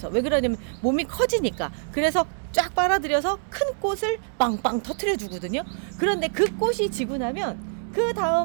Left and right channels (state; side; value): silent; left; 62 dB below the other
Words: 왜 그러냐면 몸이 커지니까, 그래서 쫙 빨아들여서 큰 꽃을 빵빵 터트려 주거든요. 그런데 그 꽃이 지고 나면 그